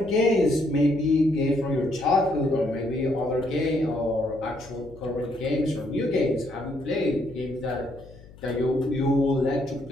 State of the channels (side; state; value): left; noise; hum, 21 dB below the sound